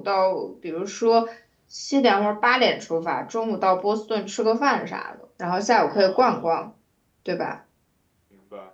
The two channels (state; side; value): identical; both; correlation 1.00